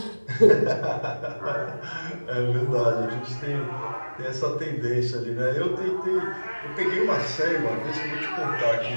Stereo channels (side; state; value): both; inverted; correlation -1.00